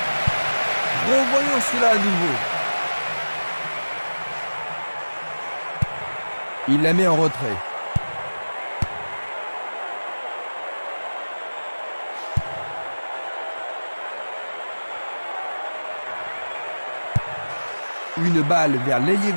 Revoyons cela à nouveau. Il la met en retrait. Une balle vers l'ailier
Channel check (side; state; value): both; inverted; correlation -1.00